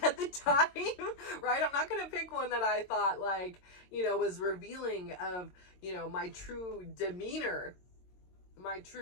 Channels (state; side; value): late; right; 22 ms